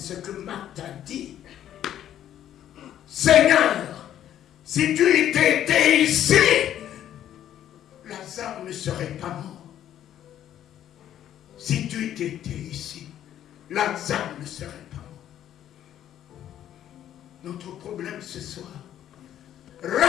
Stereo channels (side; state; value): right; quieter; 11.1 dB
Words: que Marthe a dit. Seigneur, si tu étais ici, Lazare ne serait pas mort. Si tu étais ici, Lazare ne serait pas mort. Notre problème ce soir,